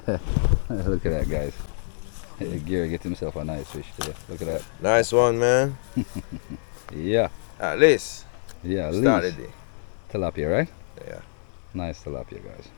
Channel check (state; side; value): silent; right; digital silence